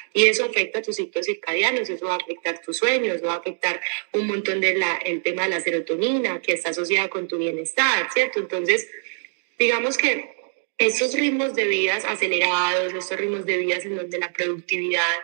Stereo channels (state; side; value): silent; left; 62 dB below the other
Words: y eso afecta a tus ciclos circadianos, eso va a afectar tus sueños, eso va a afectar un montón el tema de la serotonina que está asociada con tu bienestar, ¿cierto? Entonces, digamos que estos ritmos de vidas acelerados, estos ritmos de vidas en donde la productividad